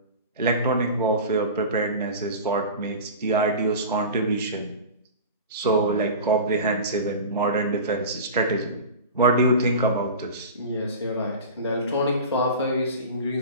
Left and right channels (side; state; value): both; inverted; correlation -0.33